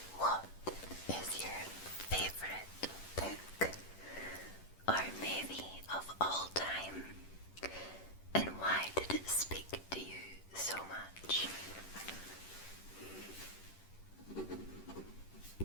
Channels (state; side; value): late; right; 10 ms